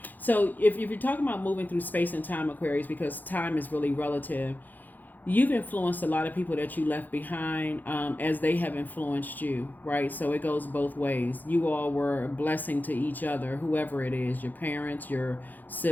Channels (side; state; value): right; late; 0.085 ms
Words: So if you're talking about moving through space and time, Aquarius, because time is really relative, you've influenced a lot of people that you left behind as they have influenced you, right? So it goes both ways. You all were a blessing to each other, whoever it is, your parents, your